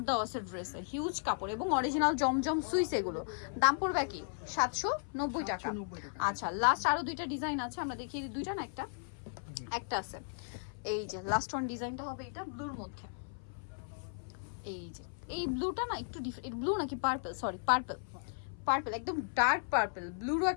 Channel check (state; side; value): silent; right; 54 dB below the other